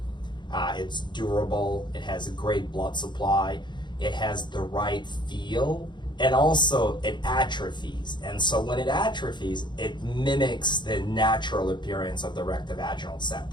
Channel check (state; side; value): late; right; 0.22 ms